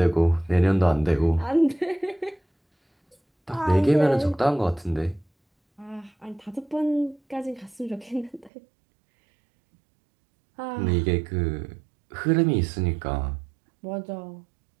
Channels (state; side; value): drops out; left; at 8.5 s